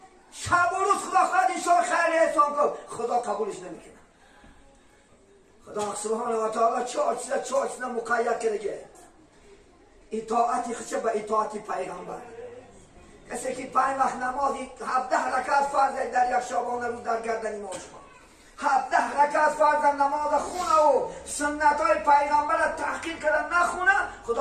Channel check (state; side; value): identical; both; correlation 1.00